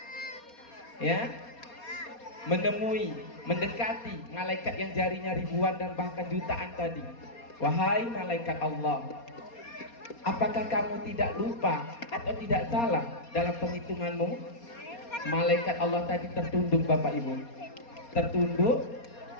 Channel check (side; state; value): right; late; 4.2 ms